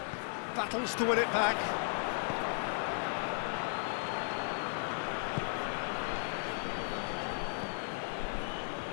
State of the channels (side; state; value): right; silent; 54 dB below the other